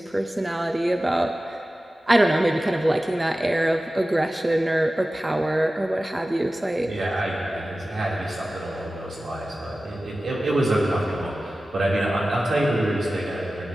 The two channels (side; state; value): both; normal; correlation 0.95